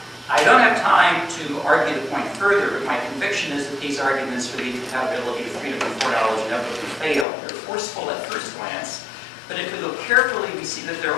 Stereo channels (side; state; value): right; drops out; at 7.2 s